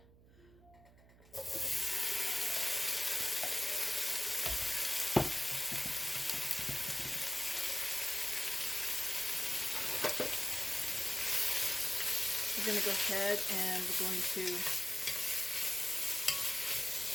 We're going to go ahead and we're going to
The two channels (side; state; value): right; noise; hum, 25 dB below the sound